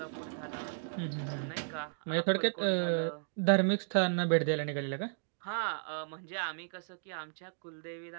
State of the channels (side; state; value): left; silent; digital silence